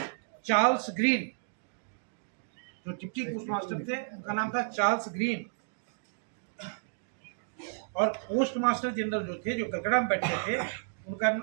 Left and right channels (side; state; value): left; silent; digital silence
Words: चार्ल्स ग्रीन। जो डिप्टी पोस्ट मास्टर थे उनका नाम था चार्ल्स ग्रीन, और पोस्ट मास्टर जनरल जो थे, जो कलकत्ता में बैठे थे, उनका